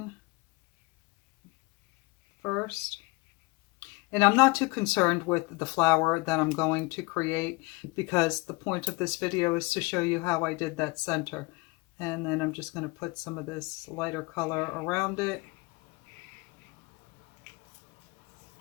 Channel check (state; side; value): quieter; right; 25.1 dB